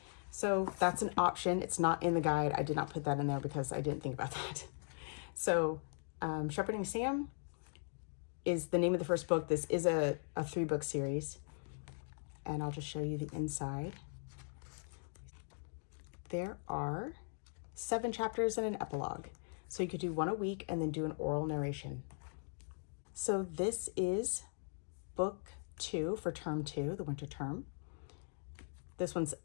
So that's an option. It's not in the guide. I did not put that in there because I didn't think about that. So Shepherding Sam is the name of the first book. This is a 3-book series. And I'll just show you the inside. There are 7 chapters and an epilogue. So you could do 1 a week and then do an oral narration. So this is Book 2 for term 2, the winter term. This one's,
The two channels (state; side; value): silent; right; digital silence